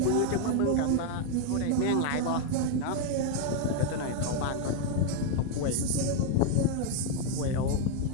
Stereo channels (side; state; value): both; different; correlation 0.01